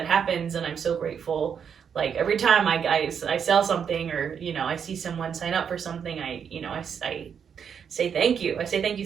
happens and I'm so grateful. Like every time I sell something or, I see someone sign up for something, I say thank you. I say thank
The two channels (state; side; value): quieter; left; 7.4 dB